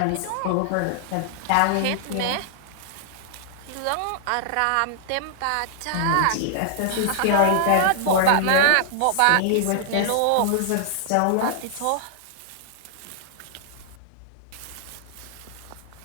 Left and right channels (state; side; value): different; both; correlation -0.01